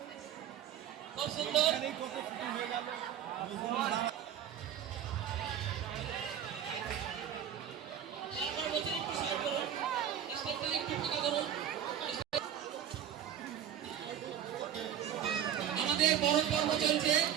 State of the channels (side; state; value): left; quieter; 9.7 dB